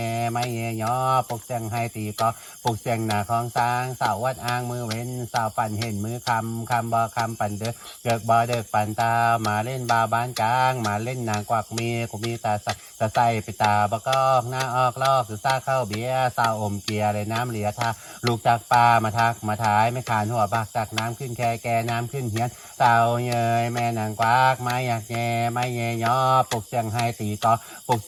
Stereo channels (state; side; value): identical; both; correlation 1.00